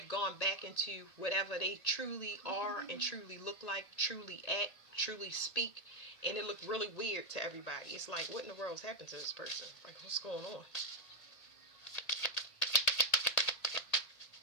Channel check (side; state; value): right; late; 1.8 ms